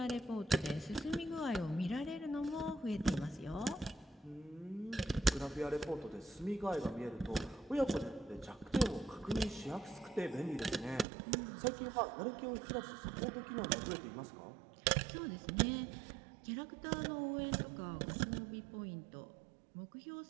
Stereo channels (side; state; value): left; drops out; at 11.1 s